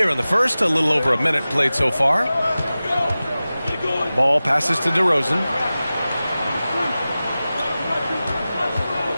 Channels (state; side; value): inverted; both; correlation -0.96